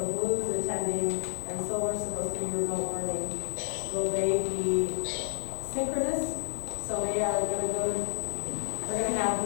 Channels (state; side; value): silent; right; digital silence